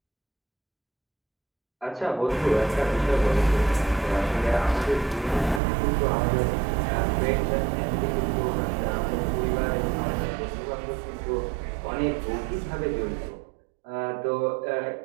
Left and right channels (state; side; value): drops out; left; at 5.6 s